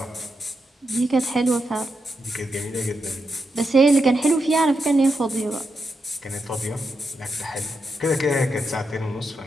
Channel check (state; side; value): normal; both; correlation 0.85